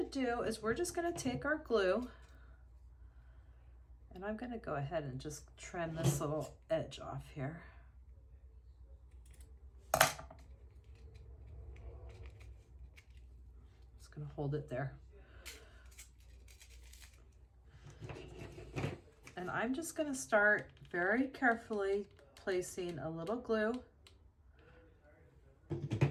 to do is we're just going to take our glue, and I'm going to go ahead and just trim this little edge off here. Just going to hold it there. And I'm just going to start very carefully placing a little glue.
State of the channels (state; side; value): identical; both; correlation 1.00